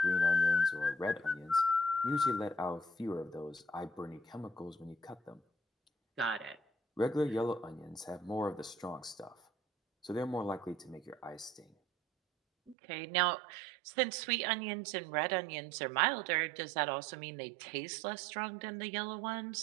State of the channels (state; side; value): drops out; left; at 12.8 s